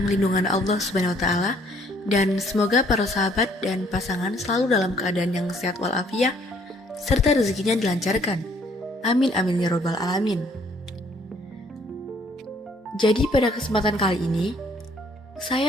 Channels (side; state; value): both; normal; correlation 0.63